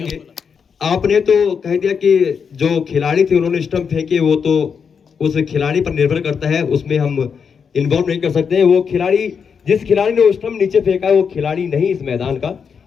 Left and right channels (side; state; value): right; quieter; 6.4 dB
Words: आपने तो कह दिया कि जो खिलाड़ी थे उन्होंने स्टंप फेंके, वो तो उस खिलाड़ी पर निर्भर करता है, उसमें हम इन्वॉल्व नहीं कर सकते हैं। वो खिलाड़ी, जिस खिलाड़ी ने वो स्टंप नीचे फेंका है वो खिलाड़ी नहीं इस मैदान का,